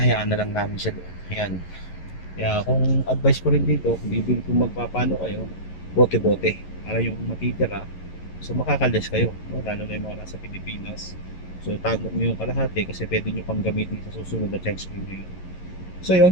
na lang namin siya doon. Ayan. Kaya kung advice ko rin dito, kung magpapano kayo, bote-bote. Para yung matitira, so makakalis kayo. No? Lalo na yung mga nasa Pilipinas. So tago nyo yung kalahati kasi pwede nyo pang gamitin sa susunod na check screen nyo. So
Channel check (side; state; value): right; late; 11 ms